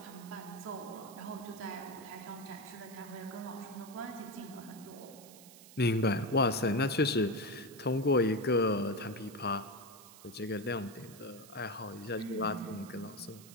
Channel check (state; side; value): noise; right; hiss, 19 dB below the sound